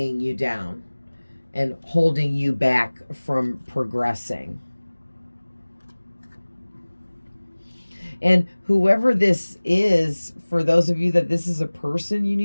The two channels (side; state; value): both; inverted; correlation -1.00